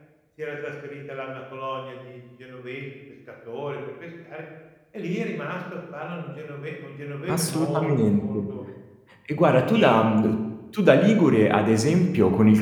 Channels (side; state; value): both; identical; correlation 1.00